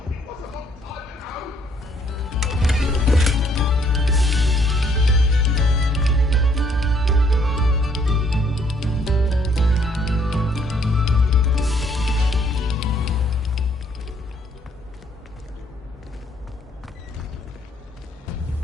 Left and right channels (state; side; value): normal; both; correlation 0.65